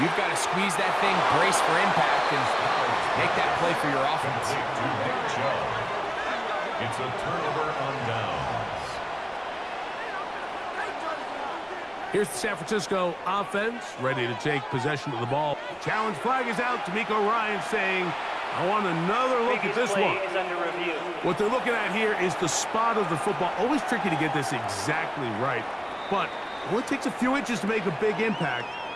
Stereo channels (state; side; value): identical; both; correlation 1.00